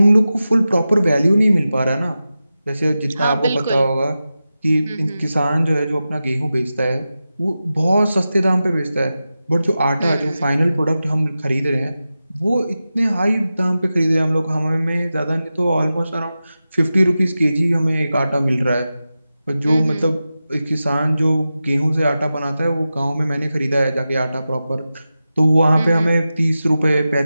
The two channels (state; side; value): inverted; both; correlation -0.93